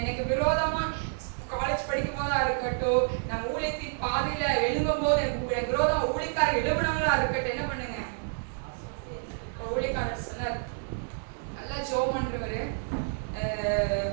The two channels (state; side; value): silent; left; digital silence